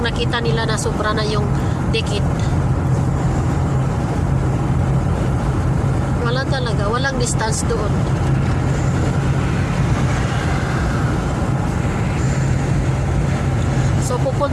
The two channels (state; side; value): identical; both; correlation 1.00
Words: nila na sobra na yung dikit. Wala talaga, walang distance doon. So